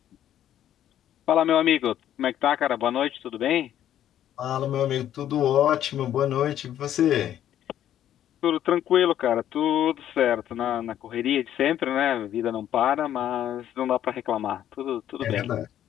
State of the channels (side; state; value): right; quieter; 11.2 dB